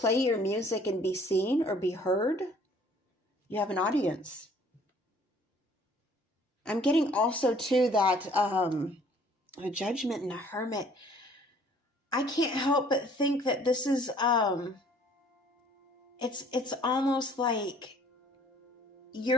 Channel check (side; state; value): both; normal; correlation 0.57